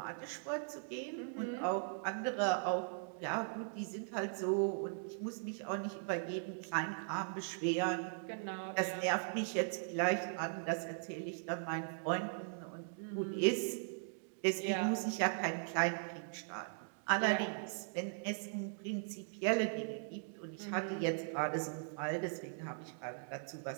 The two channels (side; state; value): left; silent; digital silence